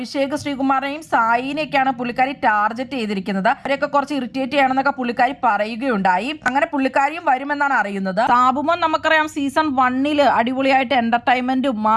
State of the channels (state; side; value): identical; both; correlation 1.00